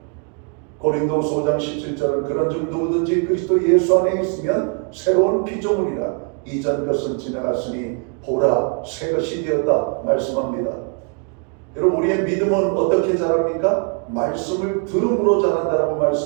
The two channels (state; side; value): quieter; left; 38.8 dB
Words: 고린도서 5장 17절은 그런즉 누구든지 그리스도 예수 안에 있으면 새로운 피조물이라 이전 것은 지나갔으니 보라 새 것이 되었다 말씀합니다. 여러분 우리의 믿음은 어떻게 자랍니까? 말씀을 들음으로 자란다라고